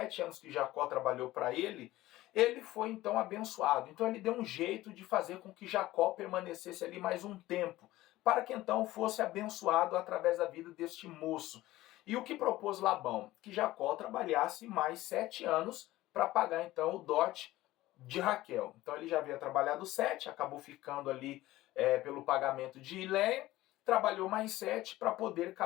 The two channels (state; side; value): quieter; right; 16.7 dB